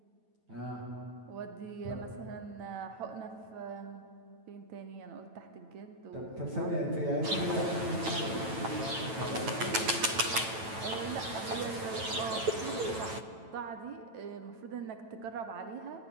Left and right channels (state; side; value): late; left; 9.0 ms